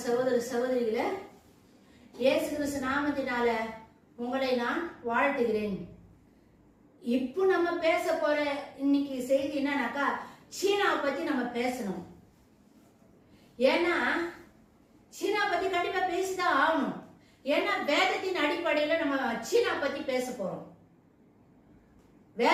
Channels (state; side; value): identical; both; correlation 1.00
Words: சகோதர சகோதரிகளே, இயேசு கிறிஸ்து நாமத்தினால உங்களை நான் வாழ்த்துகிறேன். இப்போ நம்ம பேச போற இன்னைக்கு செய்தி என்னன்னாக்கா, சீனாவை பத்தி நம்ம பேசணும். ஏன்னா சீனா பத்தி கண்டிப்பா பேசிதான் ஆகணும். ஏன்னா வேதத்தின் அடிப்படையில நம்ம சீனா பத்தி பேச போறோம்.